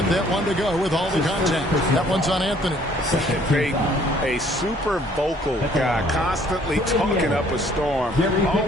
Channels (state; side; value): normal; both; correlation 0.60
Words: that one to go with all the contact. That one's on Anthony. Payton, a super vocal guy, constantly talking up a storm,